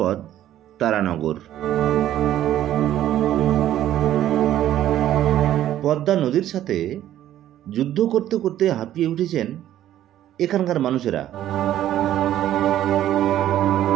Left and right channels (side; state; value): left; quieter; 12.4 dB